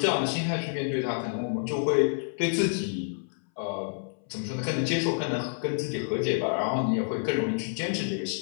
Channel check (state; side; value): silent; right; 59 dB below the other